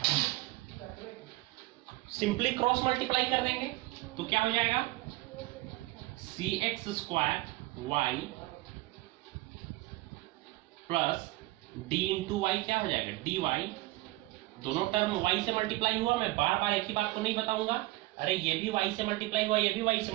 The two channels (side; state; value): left; quieter; 20.1 dB